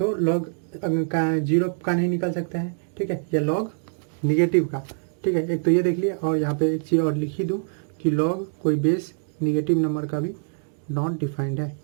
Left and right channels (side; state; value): left; silent; 62 dB below the other